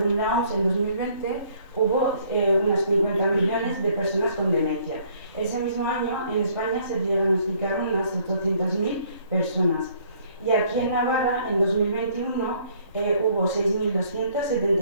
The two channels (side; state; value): both; inverted; correlation -0.62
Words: la OMS, en 2020 hubo unas 50 millones de personas con demencia. Ese mismo año, en España se diagnosticaron unas 800.000 personas. Y aquí en Navarra, en 2021, hubo